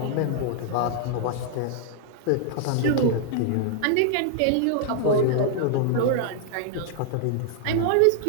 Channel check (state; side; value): different; both; correlation -0.01